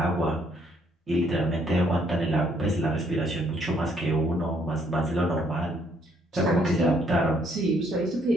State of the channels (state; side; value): normal; both; correlation 0.68